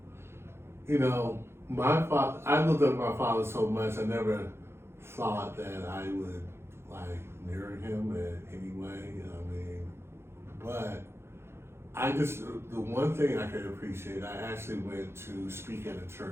you know, I looked up my father so much. I never thought that I would like near him in any way. I mean, but I just, the one thing I could appreciate, I actually went to speak at a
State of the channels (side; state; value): left; late; 0.12 ms